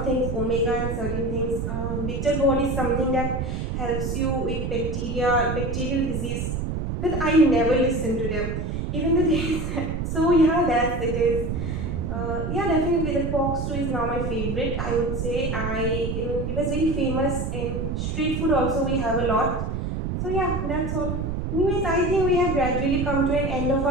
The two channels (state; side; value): noise; right; rumble, 2 dB below the sound